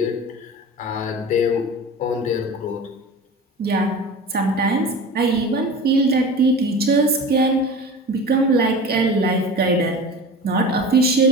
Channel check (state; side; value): normal; both; correlation 0.35